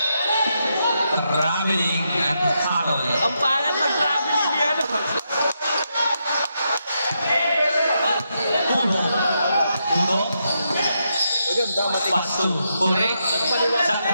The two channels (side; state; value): both; inverted; correlation -0.82